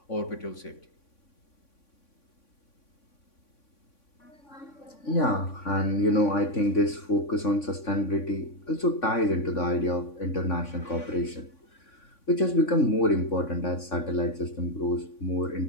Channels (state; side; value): late; right; 3.6 ms